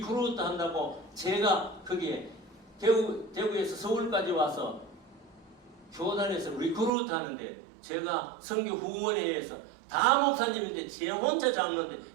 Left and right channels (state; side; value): drops out; left; at 6.9 s